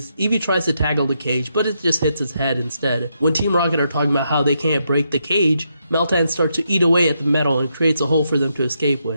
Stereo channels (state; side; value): inverted; both; correlation -0.80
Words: Eevee tries to tackle the cage, but it just hits his head instead. When Team Rocket are talking about how they can't break the cage, Meltan starts to eat away at the metal and creates a hole for them to escape